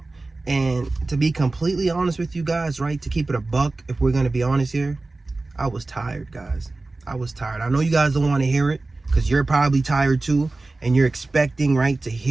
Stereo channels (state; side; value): quieter; left; 3.2 dB